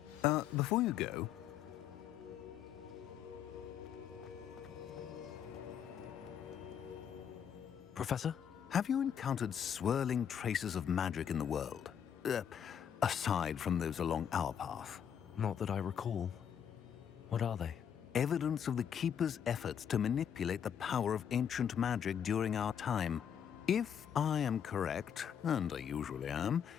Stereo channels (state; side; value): quieter; right; 8.5 dB